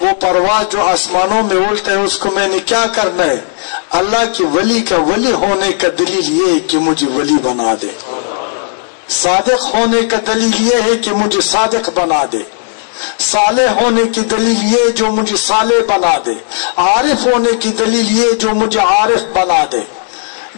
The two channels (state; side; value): silent; right; digital silence